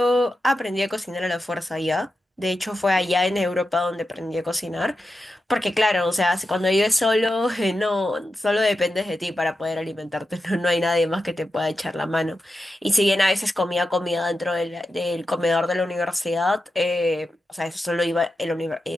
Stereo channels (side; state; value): both; normal; correlation 0.90